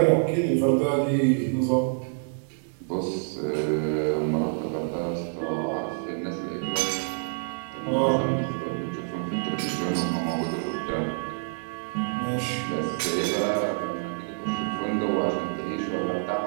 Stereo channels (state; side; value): silent; left; 60 dB below the other